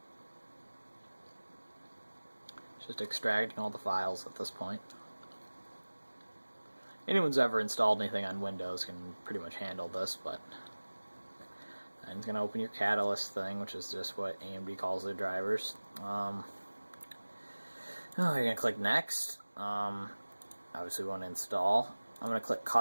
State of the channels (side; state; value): both; inverted; correlation -1.00